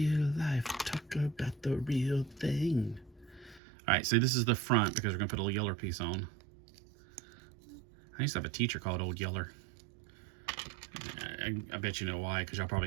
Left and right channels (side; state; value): left; drops out; at 3.6 s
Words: life, talk about the real thing. All right, so this is the front because we're gonna put a little yeller piece on. I used to have a teacher called Old Yeller. I bet you know why, because y'all